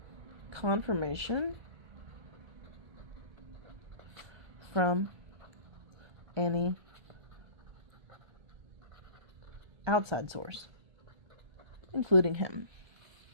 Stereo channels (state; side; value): late; left; 1.3 ms